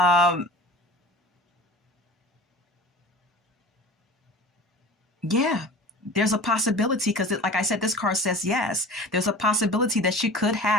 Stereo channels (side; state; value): both; normal; correlation 0.38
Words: yeah, there's a possibility, because like I said, this card says yes. There's a possibility that she could